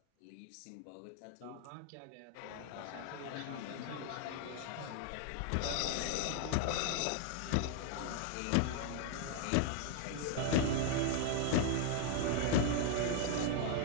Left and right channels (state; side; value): different; both; correlation 0.00